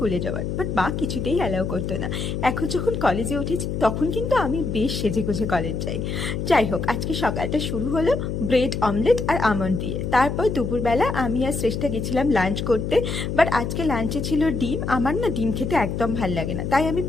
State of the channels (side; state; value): left; noise; hum, 3 dB below the sound